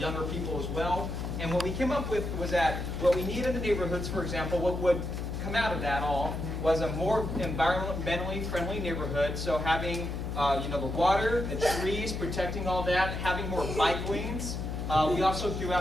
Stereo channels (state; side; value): noise; left; hum, 4 dB below the sound